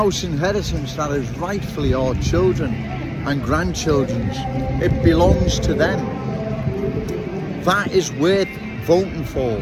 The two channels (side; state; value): both; identical; correlation 1.00